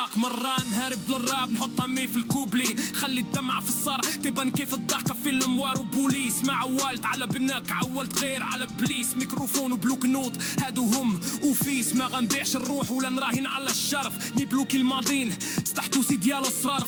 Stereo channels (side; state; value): both; identical; correlation 1.00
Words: مرة نهرب للراب نحط همي في الكوبلي خلي الدمعة في الصار تبان كيف الضحكة في الموار وبوليس مع عوالت على بناك عولت غير على بليس ميكروفون وبلوك نوت هادو هم وفيس ما غنبيعش الروح ولا نراهن على الشرف نبلوكي الماضين استحتوسي ديال